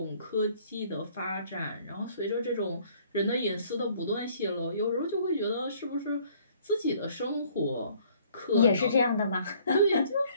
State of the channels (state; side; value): inverted; both; correlation -0.59